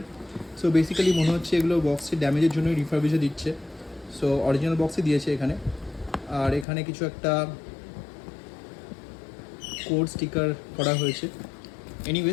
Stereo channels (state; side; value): drops out; right; at 6.7 s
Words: সো বেসিক্যালি মনে হচ্ছে এগুলো বক্সের ড্যামেজের জন্যই রিফারবিশে দিচ্ছে। সো অরিজিনাল বক্সে দিয়েছে এখানে, আর এখানে কিছু একটা কোড স্টিকার করা হয়েছে।